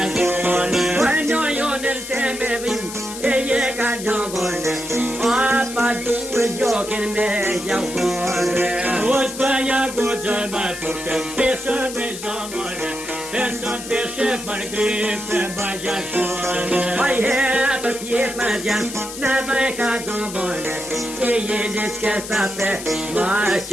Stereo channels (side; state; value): left; noise; hiss, 10 dB below the sound